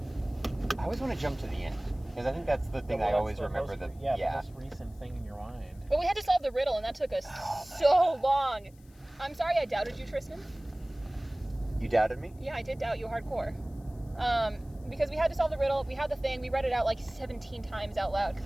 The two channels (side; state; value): left; noise; hiss, 30 dB below the sound